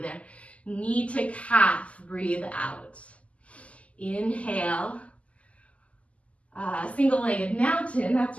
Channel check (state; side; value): late; right; 0.065 ms